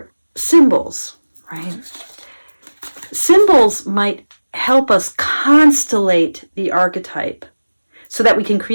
symbols, right? Symbols might help us constellate the archetype, so that we can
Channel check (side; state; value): both; inverted; correlation -1.00